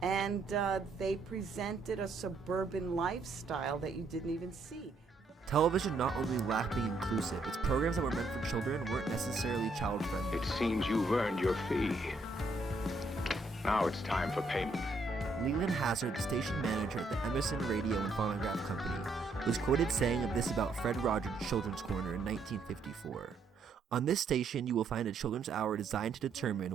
And they presented a suburban lifestyle that you didn't even see. Television not only lacked being inclusive, its programs that were meant for children weren't necessarily child-friendly. It seems you've earned your fee. Now it's time for payment. Leland Hazard, the station manager at the Emerson Radio and Phonograph Company, was quoted saying of this about Fred Rogers' Children's Corner in 1954. "On this station, you will find a children's hour designed to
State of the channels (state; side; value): quieter; left; 3.3 dB